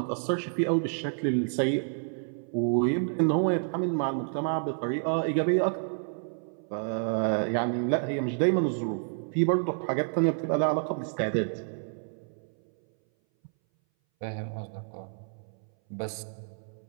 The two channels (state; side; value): silent; left; 58 dB below the other